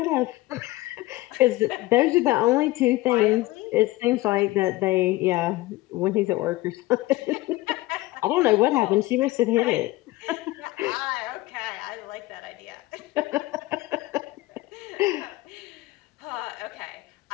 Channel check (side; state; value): right; quieter; 18.8 dB